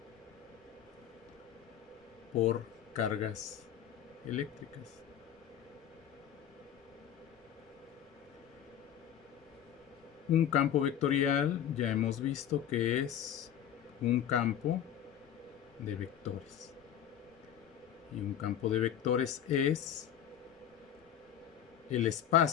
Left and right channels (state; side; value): quieter; right; 10.0 dB